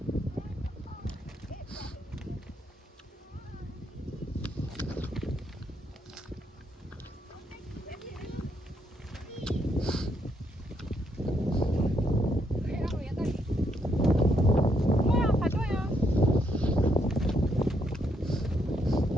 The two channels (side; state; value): both; normal; correlation 0.75